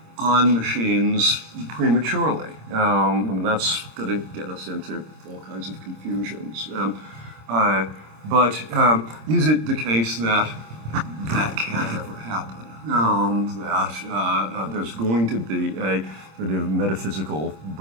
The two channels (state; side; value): late; left; 26 ms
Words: on machines prematurely. I mean, that's going to get us into all kinds of confusions. But is it the case that that can't ever happen? That there's going to be a sort of metaphysical